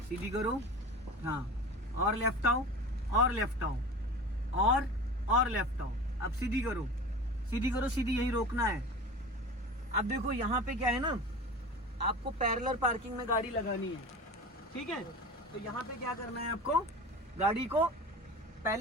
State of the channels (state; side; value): normal; both; correlation 0.34